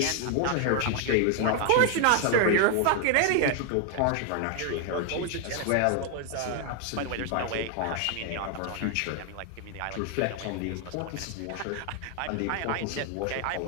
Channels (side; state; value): both; different; correlation 0.00